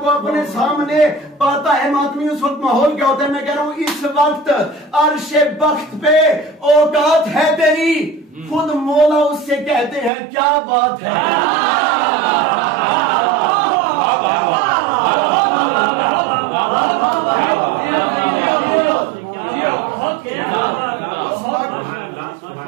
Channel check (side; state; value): left; drops out; at 10.1 s